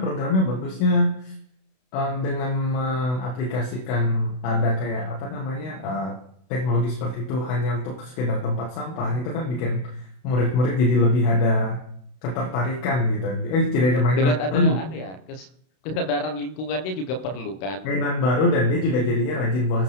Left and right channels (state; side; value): late; right; 32 ms